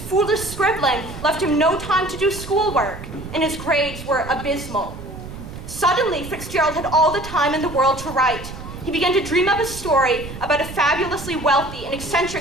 scribbling left him no time to do schoolwork, and his grades were abysmal. Suddenly, Fitzgerald had all the time in the world to write. He began to dream up a story about a fabulously wealthy and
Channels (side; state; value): right; noise; rumble, 11 dB below the sound